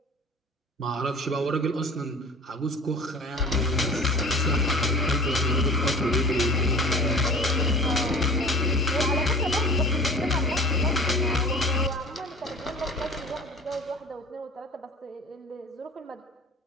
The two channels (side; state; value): both; normal; correlation 0.41